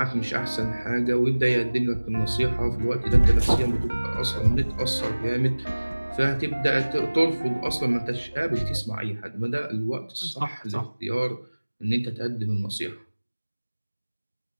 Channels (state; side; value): inverted; both; correlation -1.00